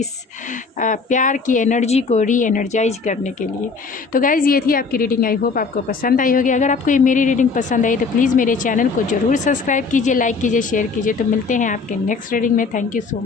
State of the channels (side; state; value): right; quieter; 4.7 dB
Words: प्यार की एनर्जी को री एनर्जाइज करने के लिए. तो गाइज़ ये थी आपकी रीडिंग. आई होप आपको पसंद आई होगी. अगर आपको ये मेरी रीडिंग पसंद आई तो प्लीज़ मेरे चैनल को ज़रूर सब्सक्राइब कीजिए, लाइक कीजिए, शेयर कीजिए. तो मिलते हैं आपके नेक्स्ट रीडिंग में. Thank you so